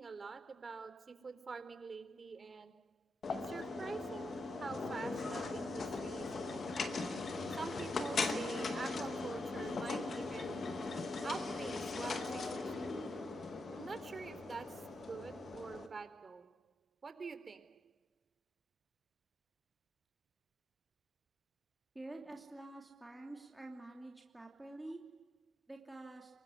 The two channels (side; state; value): both; normal; correlation 0.84